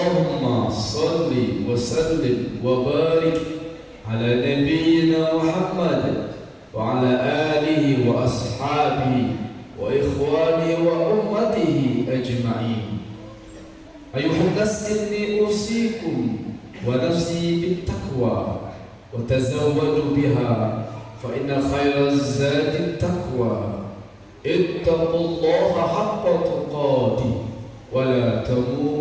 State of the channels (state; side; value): identical; both; correlation 1.00